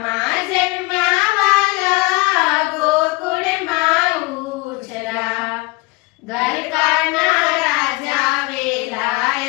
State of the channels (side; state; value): right; quieter; 24.4 dB